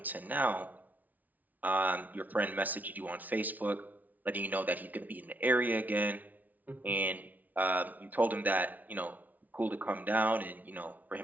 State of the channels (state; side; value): late; left; 0.078 ms